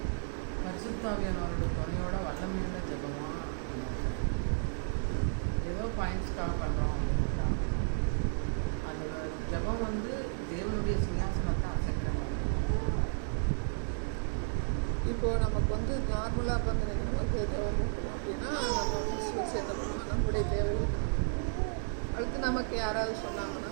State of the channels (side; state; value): left; silent; digital silence